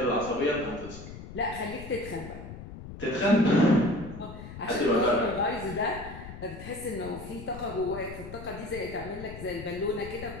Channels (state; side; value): noise; left; rumble, 12 dB below the sound